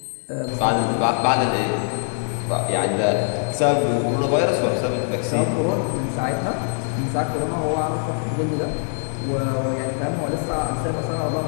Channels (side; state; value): right; silent; 62 dB below the other